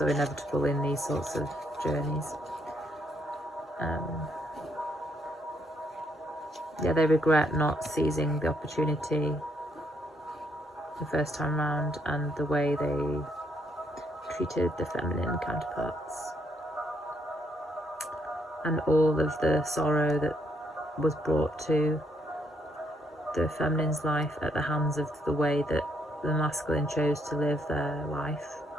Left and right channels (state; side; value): normal; both; correlation 0.73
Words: inevitable in these sorts of journeys. Yeah, they regret not seizing the opportunity the first time round, and the way they treated the feminine counterparts, and all of the sorrow that was brought to the feminine's life at the hands of the way that the masculine chose to live their life